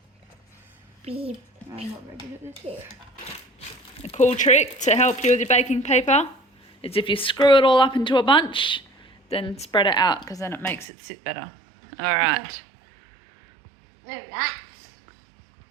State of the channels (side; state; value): left; drops out; at 10.9 s